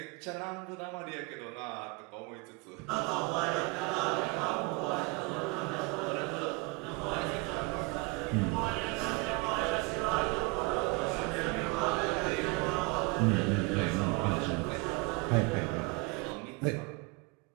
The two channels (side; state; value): left; quieter; 26.9 dB